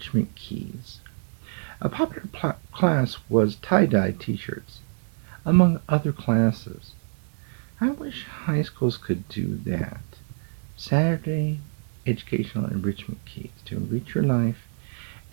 Keys. A popular class was tie-dye t-shirts, among other classes. I wish high schools could do that. Saturday Educational Enrichment Keys to enrich your life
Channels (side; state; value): left; silent; digital silence